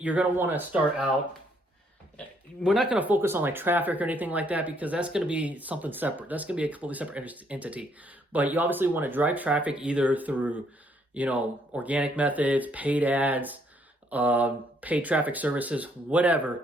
you're going to want to start out, we're not going to focus on like traffic or anything like that, because that's going to be something separate. That's going to be a completely separate entity. But you obviously want to drive traffic either through, organic methods, paid ads, paid traffic services,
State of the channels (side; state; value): both; normal; correlation 0.69